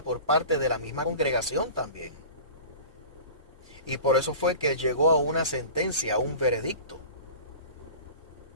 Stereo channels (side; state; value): both; inverted; correlation -0.37